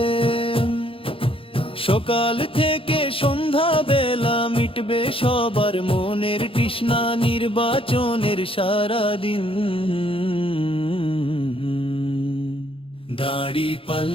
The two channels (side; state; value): right; late; 0.26 ms